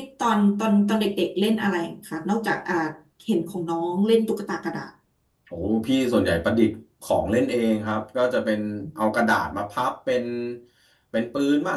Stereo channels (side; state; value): both; identical; correlation 1.00